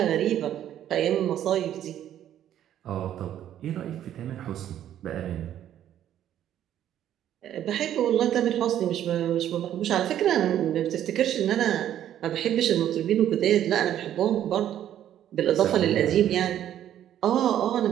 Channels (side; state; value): left; quieter; 11.1 dB